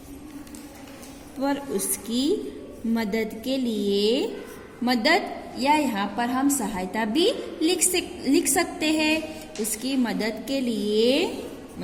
मदद या यहाँ पर हम सहायता भी लिख सकते हैं। उसकी मदद के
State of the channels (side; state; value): both; identical; correlation 1.00